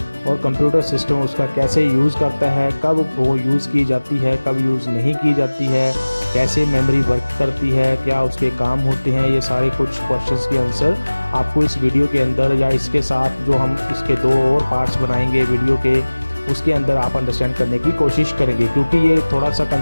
और कंप्यूटर सिस्टम उसका कैसे यूज़ करता है, कब वो यूज़ की जाती है, कब यूज़ नहीं की जाती है, कैसे मेमोरी वर्क करती है, क्या उसके काम होते हैं। ये सारे कुछ क्वेश्चंस के आंसर आपको इस वीडियो के अंदर या इसके साथ जो हम इसके दो और पार्ट्स बनाएंगे वीडियो के, उसके अंदर आप अंडरस्टैंड करने की कोशिश करेंगे। क्योंकि ये थोड़ा सा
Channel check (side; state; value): both; inverted; correlation -1.00